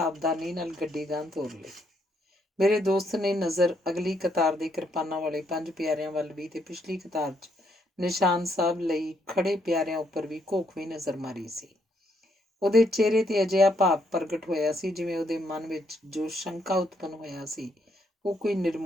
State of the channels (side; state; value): both; normal; correlation 0.74